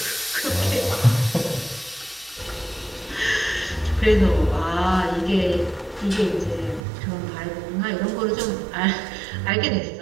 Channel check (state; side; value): drops out; left; at 6.8 s